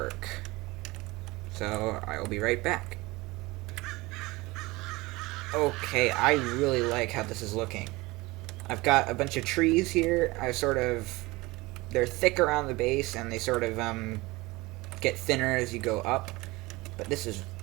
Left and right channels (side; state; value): left; quieter; 21.9 dB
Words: So, I will be right back. Okay, I really like how this is looking. I've got a bunch of trees here. They're thick around the base, and they sort of, get thinner as you go up. But this is